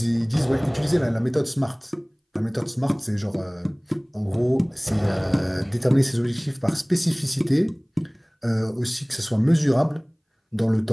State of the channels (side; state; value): both; identical; correlation 1.00